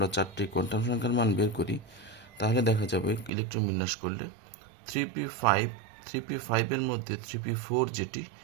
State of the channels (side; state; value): left; drops out; at 3.3 s